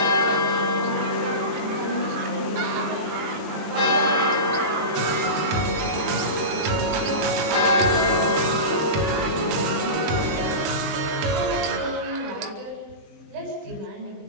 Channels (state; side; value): late; left; 20 ms